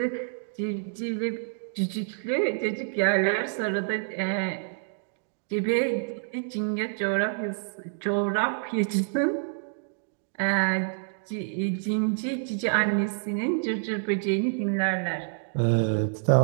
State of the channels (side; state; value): left; silent; digital silence